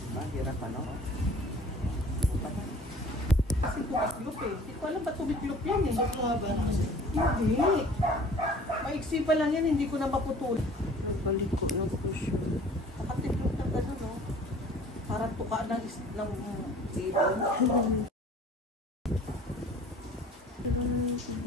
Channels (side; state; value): both; normal; correlation 0.49